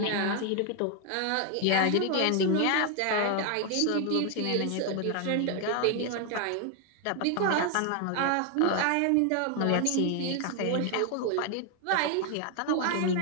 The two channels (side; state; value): both; different; correlation 0.01